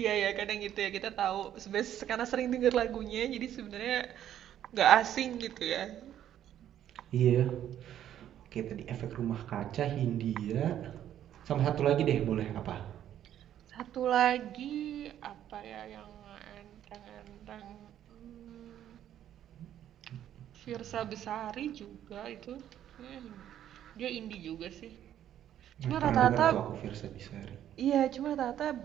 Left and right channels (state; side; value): quieter; left; 11.0 dB